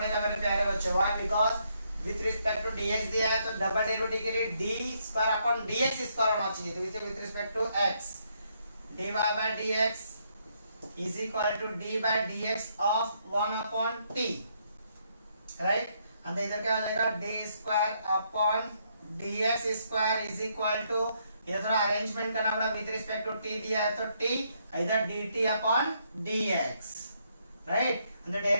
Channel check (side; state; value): both; inverted; correlation -0.74